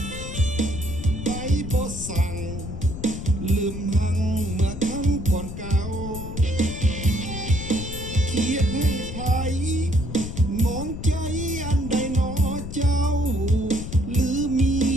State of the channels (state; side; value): noise; left; rumble, 8 dB below the sound